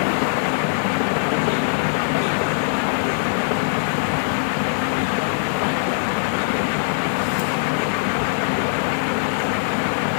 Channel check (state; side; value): silent; right; digital silence